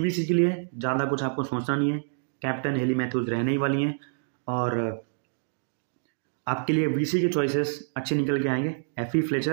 के लिए ज़्यादा कुछ आपको सोचना नहीं है, कैप्टन हेली मैथ्यूज रहने ही वाली हैं, और आपके लिए VC के चॉइसेस अच्छे निकल के आएंगे। FE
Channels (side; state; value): left; silent; digital silence